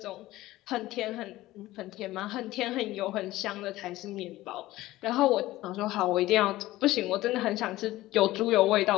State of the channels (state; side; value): quieter; right; 16.8 dB